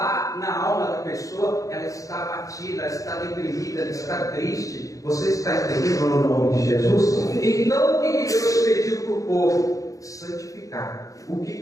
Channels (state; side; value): late; right; 0.16 ms